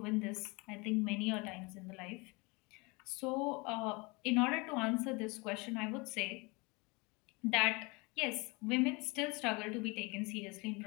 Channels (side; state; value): right; quieter; 27.2 dB